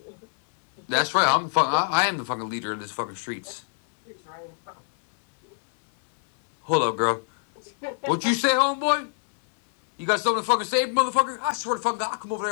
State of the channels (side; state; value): right; silent; 62 dB below the other